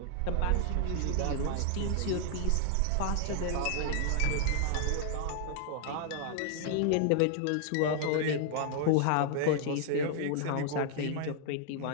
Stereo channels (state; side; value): different; both; correlation 0.00